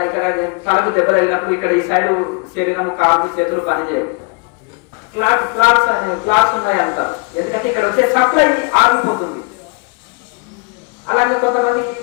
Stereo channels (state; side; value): quieter; right; 32.9 dB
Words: ఇక్కడ తలకు దెబ్బ తగిలినప్పుడు ఇక్కడ ఈ సైడ్ శరీరం, కాళ్ళు, చేతులు పనిచేయవు. క్లాస్ ఉన్నాయి అంటారు. ఎందుకంటే ఇక్కడ వచ్చే సప్లై ఆగిపోతుంది. అలాగే కొంతమందికి